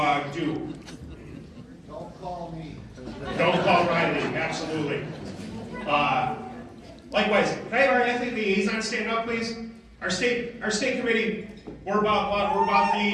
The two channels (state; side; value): identical; both; correlation 1.00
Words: do. Don't call me. Don't call Riley. Absolutely. Likewise, can I have our athlete liaison stand up, please? Our state committee, we're about our